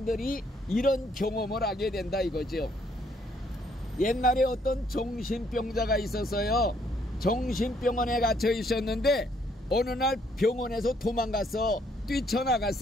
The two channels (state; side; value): normal; both; correlation 0.68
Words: 이런 경험을 하게 된다 이거죠. 옛날에 어떤 정신병자가 있었어요. 정신병원에 갇혀 있었는데 어느 날 병원에서 도망가서